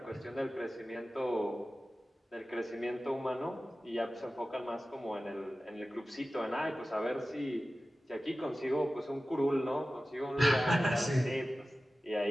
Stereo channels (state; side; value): normal; both; correlation 0.95